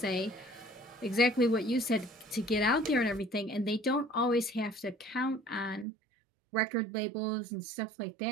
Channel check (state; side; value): drops out; left; at 5.9 s